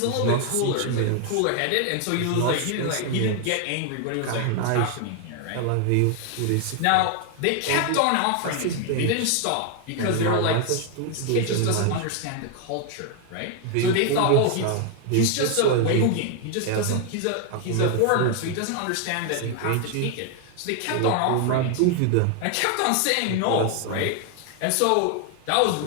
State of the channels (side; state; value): both; different; correlation 0.01